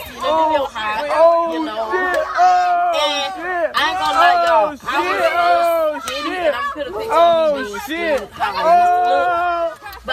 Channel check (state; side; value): identical; both; correlation 1.00